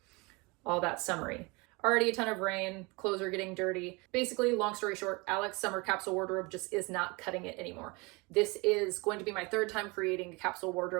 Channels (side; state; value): left; quieter; 26.7 dB